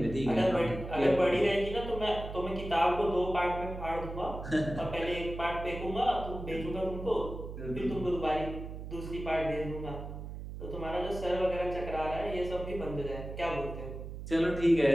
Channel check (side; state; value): right; noise; hum, 9 dB below the sound